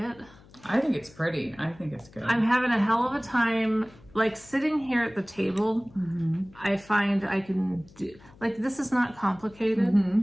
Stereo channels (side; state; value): left; noise; hum, 25 dB below the sound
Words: I think it's pretty. I think it's good. I'm having a hell of a time, like, sitting here at the table. I find I can do... Like, this is not complicated.